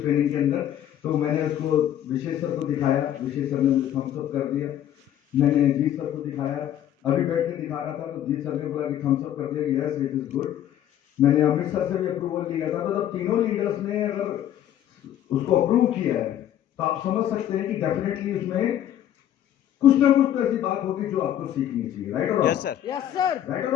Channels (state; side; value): quieter; right; 11.2 dB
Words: ट्रेनिंग के अंदर, तो मैंने उसको विशेष सर को दिखाया, विशेष सर ने मुझे थम्स अप कर दिया। मैंने जीत सर को दिखाया, अभी बैठ के दिखा रहा था तो जीत सर ने बोला कि थम्स अप कर दिया, यस इट इज गुड। मैंने अमित सर से भी अप्रूवल लिया था, तो जब तीनों लीडर्स ने अगर उसको अप्रूव किया है तो आप समझ सकते हैं कि डेफिनेटली उसमें कुछ ना कुछ तो ऐसी बात होगी जो आपको सीखनी चाहिए, राइट और yes sir, yes sir, right और